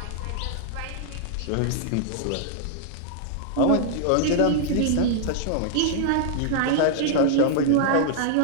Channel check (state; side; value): different; both; correlation -0.01